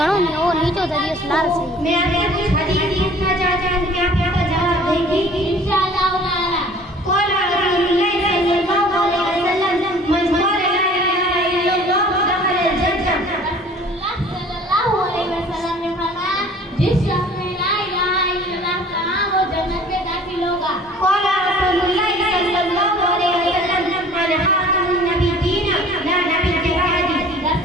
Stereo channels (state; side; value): normal; both; correlation 0.49